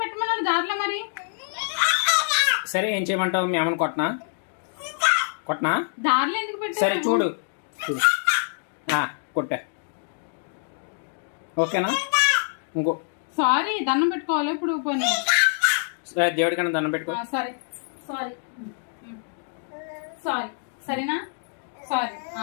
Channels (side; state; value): right; silent; digital silence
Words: పెట్టమన్నాను దారిలో మరి? సరే ఏం చేయమంటావు? మీ అమ్మని కొట్టనా? దారిలో ఎందుకు పెట్టావు? సరే చూడు కొట్టా, ఓకేనా? ఇంకో సారీ, దండం పెట్టుకోవాలి ఇప్పుడు. పోనీ దేవుడికన్నా దండం పెట్టుకో. సరే సారీ సారీ, సరేనా? Sorry,